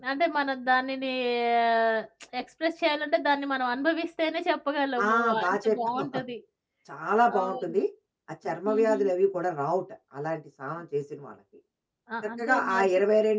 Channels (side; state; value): both; identical; correlation 1.00